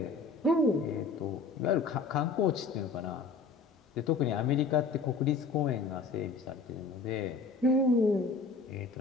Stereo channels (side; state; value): right; quieter; 4.3 dB